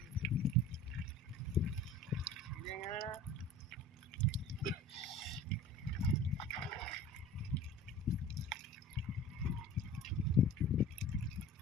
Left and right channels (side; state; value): both; normal; correlation 0.41